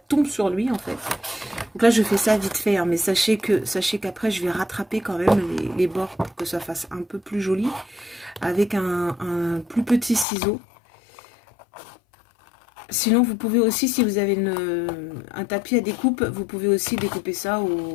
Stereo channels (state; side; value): drops out; right; at 10.2 s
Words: sur lui en fait. Donc là je fais ça vite fait, hein, mais sachez qu'après je vais rattraper quand même les bords pour que ça fasse un peu plus joli avec un plus petit ciseau. Sinon vous pouvez aussi, si vous avez un tapis à découpe, vous pouvez aussi découper ça